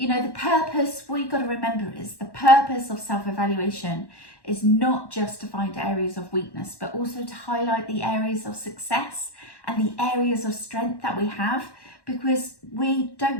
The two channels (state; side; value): late; right; 1.1 ms